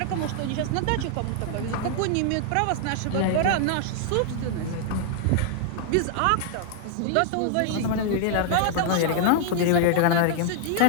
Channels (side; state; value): both; different; correlation -0.01